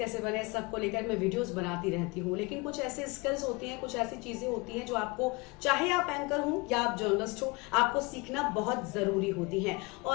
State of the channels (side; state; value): right; quieter; 26.6 dB